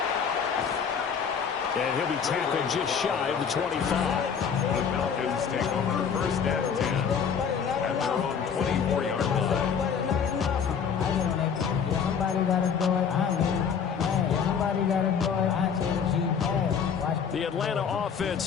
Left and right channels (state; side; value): quieter; right; 6.9 dB